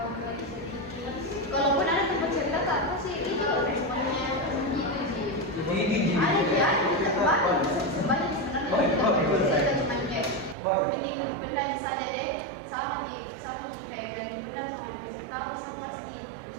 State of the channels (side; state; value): left; drops out; at 10.6 s